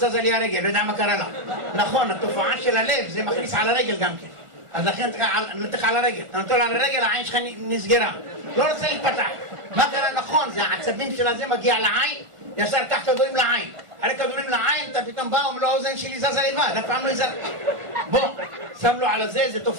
לי הרגל, לא יודע מה קרה לה. נכון, התופעה של הלב, זה מכניס על הרגל גם כן. אז לכן נתך על הרגל, אתה נותן על הרגל, העין שלך נסגרה. לא רוצה להתפתח. מה קרה? נכון, זה העצבים של הזה מגיע לעין, ישר קח כדורים לעין. אחרי כדורים לעין, אתה פתאום בא, אומר לו, האוזן שלי זזה לבד, אף פעם לא יזר. בוא, שם לו על זה, זה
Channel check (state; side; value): late; left; 1.4 ms